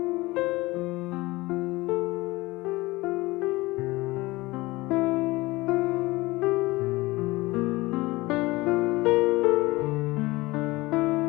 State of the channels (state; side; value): quieter; right; 21.1 dB